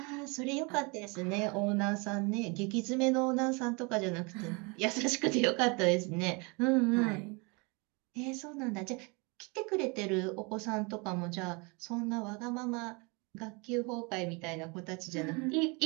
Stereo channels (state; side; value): quieter; left; 29.8 dB